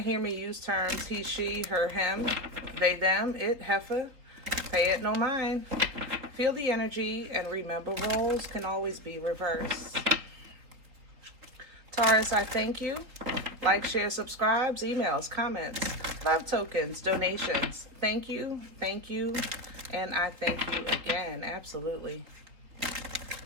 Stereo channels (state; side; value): late; left; 3.8 ms